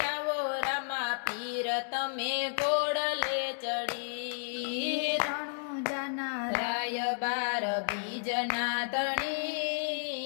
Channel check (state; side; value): silent; right; 56 dB below the other